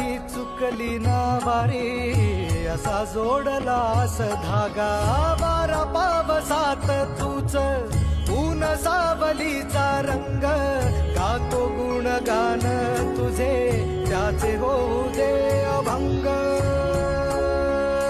चुकली ना वारी असा जोडलास धागा। वारा पावसात तूच ऊन सावलीचा रंग, गातो गुणगान तुझे त्याचे होऊ दे अभंग।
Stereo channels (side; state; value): both; identical; correlation 1.00